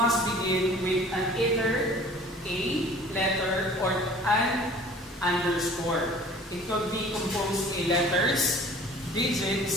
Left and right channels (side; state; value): both; normal; correlation 0.48